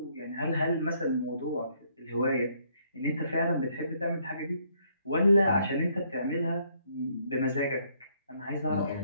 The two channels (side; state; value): both; inverted; correlation -0.69